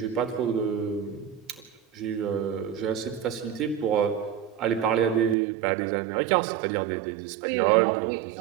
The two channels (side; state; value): left; drops out; at 5.4 s